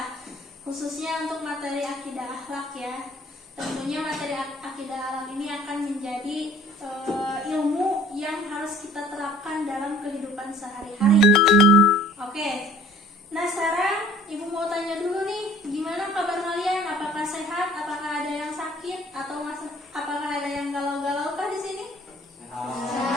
khususnya untuk materi akidah akhlak ya. Tentunya materi akidah akhlak ini akan menjadi ilmu yang harus kita terapkan dalam kehidupan sehari-hari. Oke. Nah sekarang Ibu mau tanya dulu nih, gimana kabar kalian? Apakah sehat? Apakah ada yang sakit? Atau apakah ada yang galau-galau kah di sini?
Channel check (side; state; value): both; normal; correlation 0.52